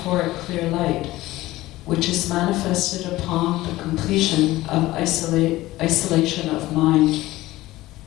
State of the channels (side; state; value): right; quieter; 17.4 dB